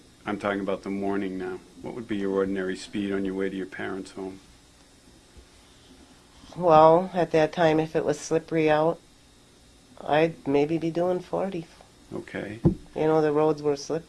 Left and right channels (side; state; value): both; identical; correlation 1.00